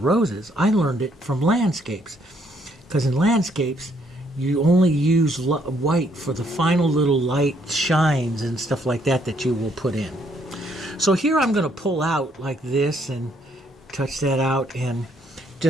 roses. I learned it from landscapes, because in landscapes you only use white for the final little light shines and stuff like that you will put in. So here I'm going to pull out like this and touch that out and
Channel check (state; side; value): normal; both; correlation 0.69